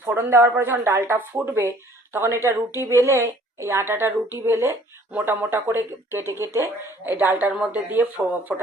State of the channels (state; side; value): normal; both; correlation 0.55